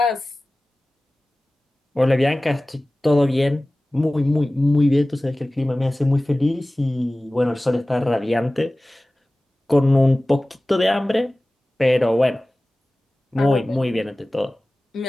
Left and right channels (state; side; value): normal; both; correlation 0.97